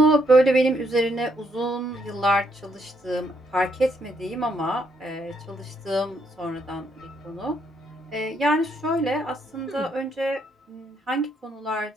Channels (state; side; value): normal; both; correlation 0.74